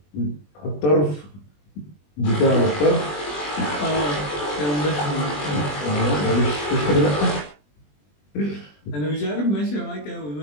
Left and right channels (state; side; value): late; right; 20 ms